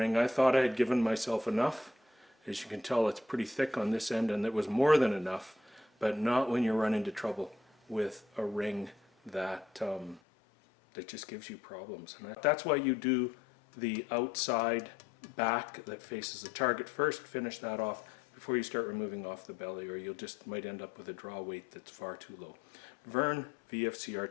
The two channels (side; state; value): right; drops out; at 10.2 s